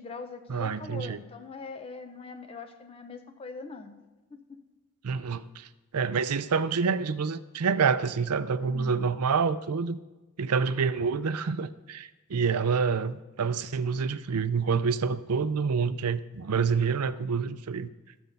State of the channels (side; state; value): left; quieter; 5.1 dB